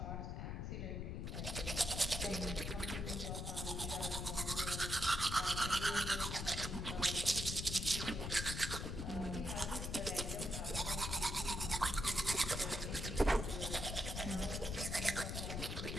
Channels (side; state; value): left; noise; rumble, 4 dB below the sound